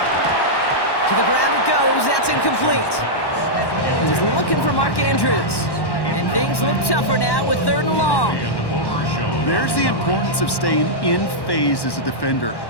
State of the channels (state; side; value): late; right; 1.1 ms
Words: To the ground it goes. That's incomplete. He's looking for Mark Andrews. And things look tougher now with 3rd and long. There's the importance of staying in phase as a defender.